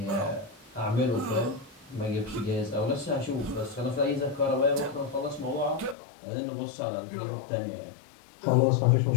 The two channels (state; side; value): drops out; right; at 6.0 s